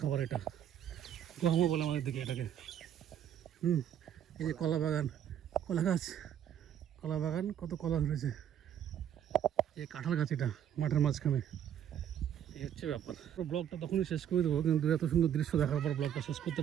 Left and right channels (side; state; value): left; quieter; 9.8 dB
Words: খাবার। এটা গহমও বলে আমাদের দিকে এটাকে। এই যে কলা বাগান, কলা গাছ, কলা বাগান, কত কলা ধরেছে। এই কাঁঠাল গাছ, এটা মাঠের মাঝখানে। এই হচ্ছে ব্যাপার। ব্লগটা তখনই শেষ করে দেবো, কিন্তু এত সুন্দর দৃশ্য দেখার পর ব্লগটা শেষ করতে